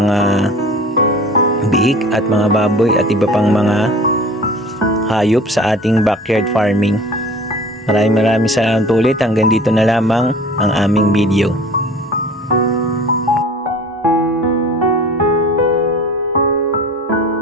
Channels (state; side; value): normal; both; correlation 0.43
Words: biik at mga baboy at iba pang mga hayop sa ating backyard farming. Maraming salamat ulit. Hanggang dito na lamang ang aming video.